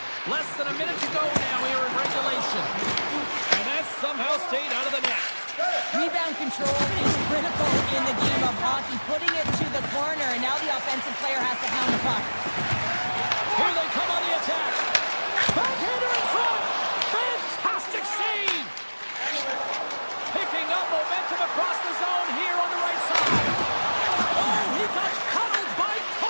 control is critical in the game of hockey. Putting it to the corner, and now the offensive player has to hound the puck. Here they come on the attack. Backhander in front. Fantastic save. Picking up momentum across the zone here on the right side. Oh, he got cuddled by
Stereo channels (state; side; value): inverted; both; correlation -1.00